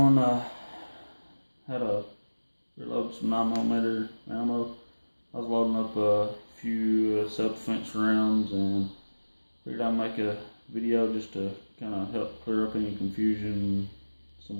how to reload some 9mm ammo. I was loading up a few self-defense rounds and figured I'd make a video just to kind of help clear up any confusion,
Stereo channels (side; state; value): both; inverted; correlation -1.00